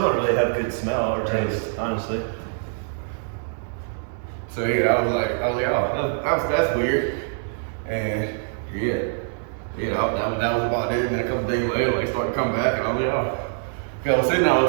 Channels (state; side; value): silent; left; digital silence